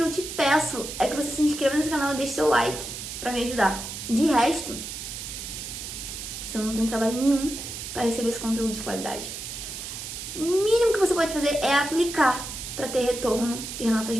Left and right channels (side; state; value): right; noise; hiss, 8 dB below the sound